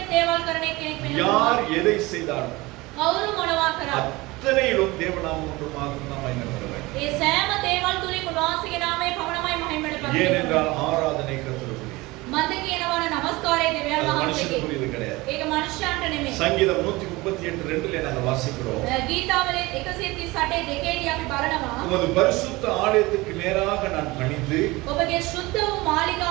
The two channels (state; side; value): quieter; left; 21.7 dB